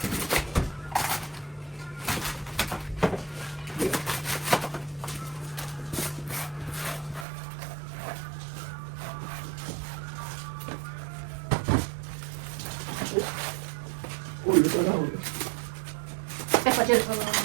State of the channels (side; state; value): left; drops out; at 7.2 s